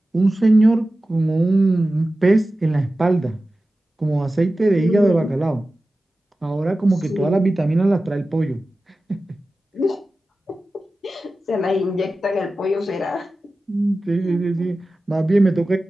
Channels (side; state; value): both; normal; correlation 0.95